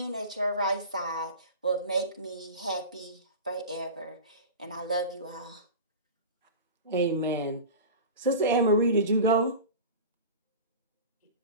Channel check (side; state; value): both; inverted; correlation -0.31